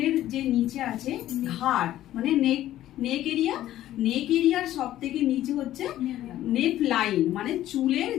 যে নিচে আছে ঘাড়, মানে নেক এরিয়ার সব থেকে নিচে হচ্ছে নেক লাইন, মানে চুলের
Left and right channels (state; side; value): quieter; right; 13.5 dB